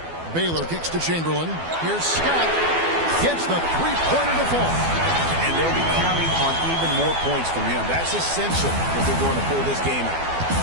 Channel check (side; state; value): left; late; 12 ms